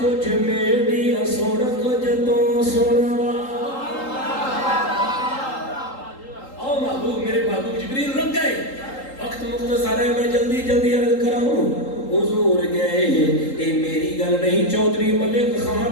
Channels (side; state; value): right; late; 3.8 ms